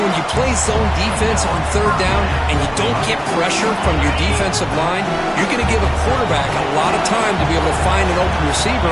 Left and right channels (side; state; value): both; identical; correlation 1.00